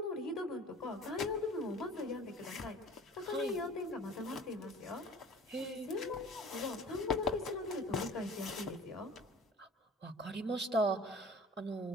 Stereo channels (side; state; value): both; normal; correlation 0.44